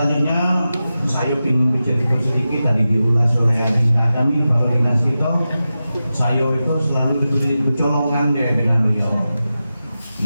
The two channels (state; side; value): inverted; both; correlation -0.92